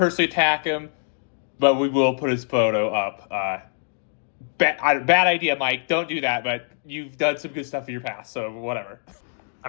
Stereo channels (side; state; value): right; silent; digital silence